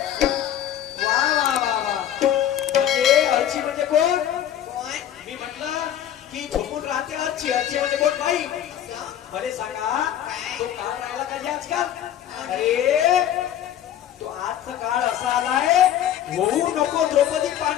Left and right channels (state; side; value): quieter; right; 10.9 dB